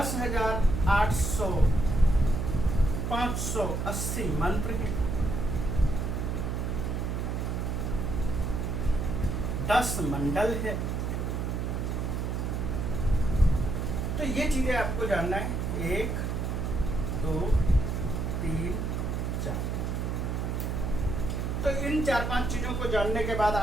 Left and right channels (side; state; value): right; noise; hum, 1 dB below the sound